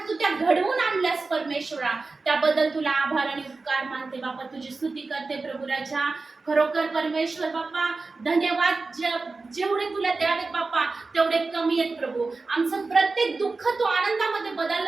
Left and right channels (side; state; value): left; quieter; 3.8 dB